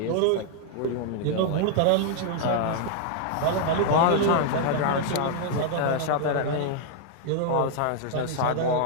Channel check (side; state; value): both; different; correlation 0.00